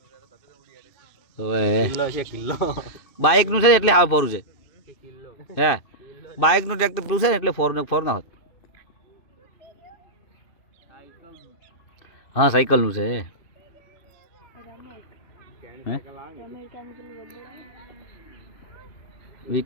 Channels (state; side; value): late; right; 2.6 ms